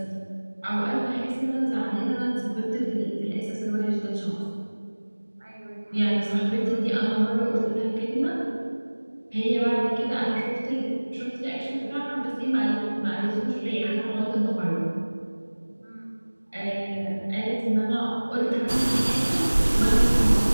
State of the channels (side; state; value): both; inverted; correlation -1.00